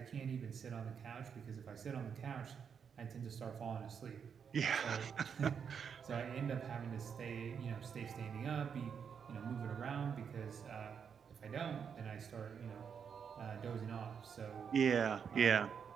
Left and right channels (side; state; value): left; quieter; 7.0 dB